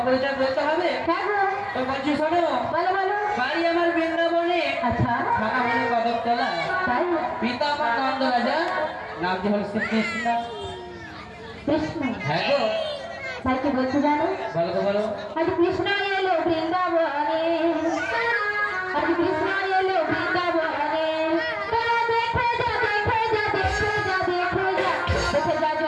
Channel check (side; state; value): both; identical; correlation 1.00